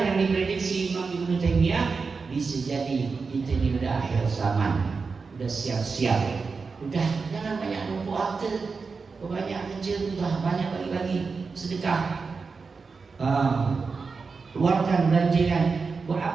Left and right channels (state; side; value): quieter; left; 4.7 dB